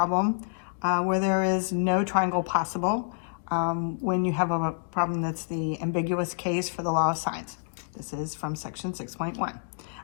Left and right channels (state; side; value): silent; right; 59 dB below the other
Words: where there is no triangle possible when you have a problem that's the ambiguous case for the law of sines. This is from section 6.1.